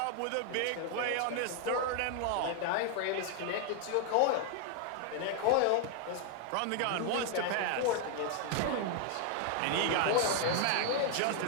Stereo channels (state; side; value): different; both; correlation 0.00